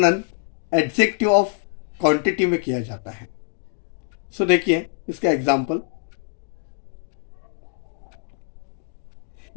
एडजेक्टिव ऑफ क्वांटिटी में किया जाता है। देखिए इसका एग्जाम्पल,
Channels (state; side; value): silent; right; digital silence